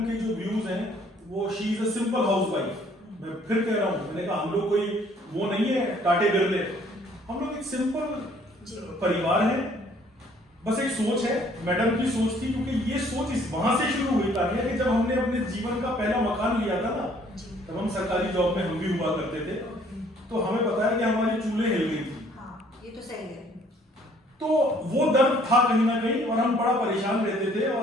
के जो व्यूज हैं वो she is a simple housewife. मैं फिर कह रहा हूँ, मैंने कहा हम लोग कोई वो नहीं है टाटे बिरले, हम लोग एक सिंपल परिवार है। बस एक सोच है, मैडम की सोच थी, क्योंकि ये सोच इस वहां से शुरू हुई तान्या कि जब हमने अपने जीवन का पहला मकान लिया था ना, तब हम सरकारी जॉब में हम भी हुआ करते थे, तो हमें पता है कि हमारी चूल्हे हिल गई थी। हाँ, ये तो सही है। तो वो दर्द था कहीं ना कहीं, और हम बड़ा परेशान रहते थे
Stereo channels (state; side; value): normal; both; correlation 0.60